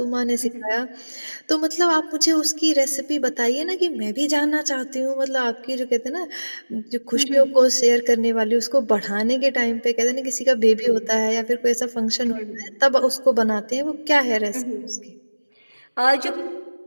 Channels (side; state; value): both; inverted; correlation -1.00